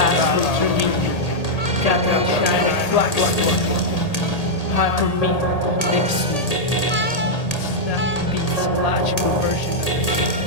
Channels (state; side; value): late; right; 1.8 ms